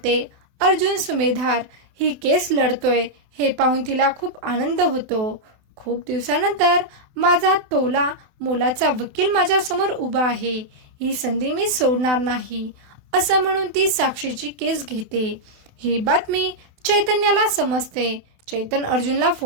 अर्जुन सुमेधार ही केस लढतोय हे पाहून तिला खूप आनंद होतो. खूप दिवसानंतर माझा तोला मोलाचा वकील माझ्या समोर उभा आहे, ही संधी मी सोडणार नाही, असं म्हणून ती साक्षीची केस घेते. ही बातमी चैतन्याला समजते. चैतन अर्जुनला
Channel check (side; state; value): left; late; 28 ms